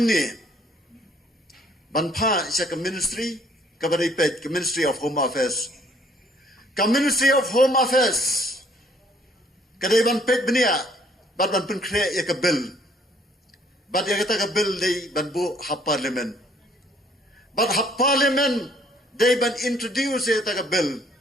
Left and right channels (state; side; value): normal; both; correlation 0.61